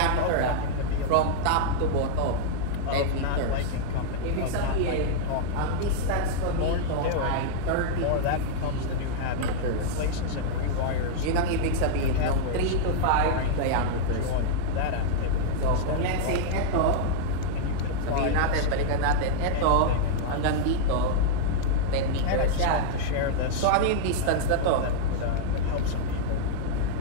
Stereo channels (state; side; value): different; both; correlation -0.01